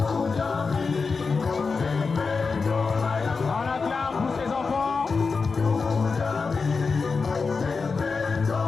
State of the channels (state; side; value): quieter; right; 4.7 dB